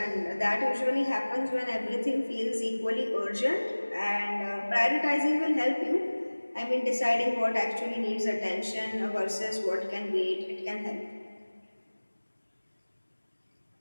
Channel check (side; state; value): both; inverted; correlation -1.00